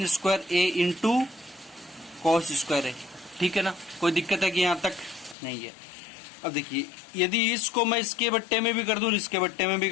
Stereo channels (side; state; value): right; drops out; at 5.4 s